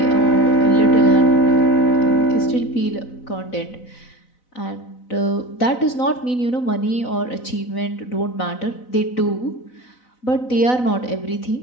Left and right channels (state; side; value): late; right; 4.0 ms